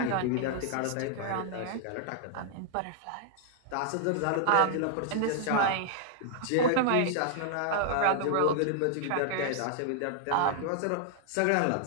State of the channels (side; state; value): both; different; correlation 0.00